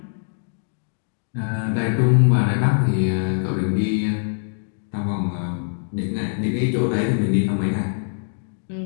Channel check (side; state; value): right; silent; digital silence